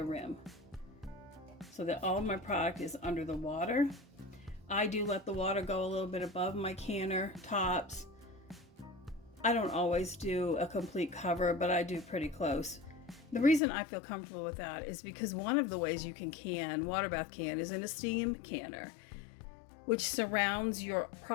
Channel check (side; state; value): right; drops out; at 13.6 s